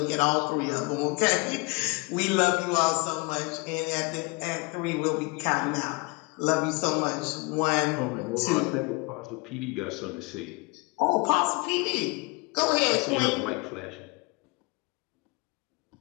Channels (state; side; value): quieter; right; 27.8 dB